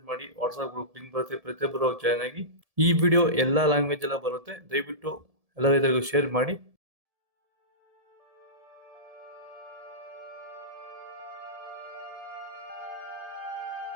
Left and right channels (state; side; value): late; left; 1.7 ms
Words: ಮಾಡಿ. ವಾಟ್ಸ್ಆಪ್ ಗ್ರೂಪ್ ಲಿಂಕ್ ಬರುತ್ತೆ, ಪ್ರತಿಯೊಬ್ಬರು ಜಾಯ್ನ್ ಆಗಿ. ಈ ವಿಡಿಯೋ ಎಲ್ಲಾ ಲ್ಯಾಂಗ್ವೇಜ್ ಎಲ್ಲ ಬರುತ್ತೆ, ದಯವಿಟ್ಟು ಎಲ್ಲ ರೈತರಿಗೂ ಶೇರ್ ಮಾಡಿ.